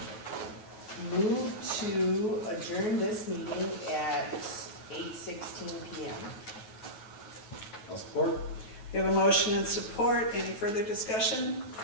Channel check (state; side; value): late; right; 9.4 ms